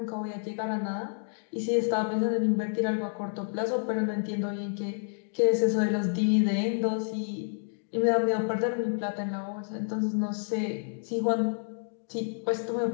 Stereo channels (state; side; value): silent; right; digital silence